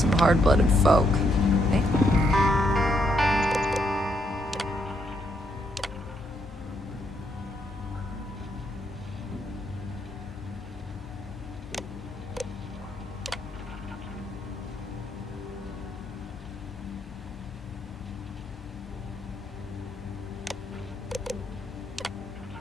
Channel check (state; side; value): normal; both; correlation 0.75